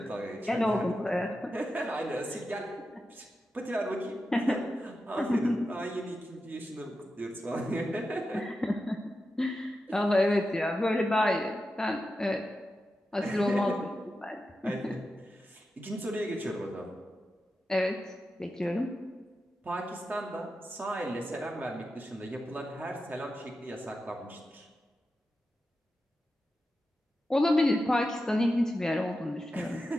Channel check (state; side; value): normal; both; correlation 0.90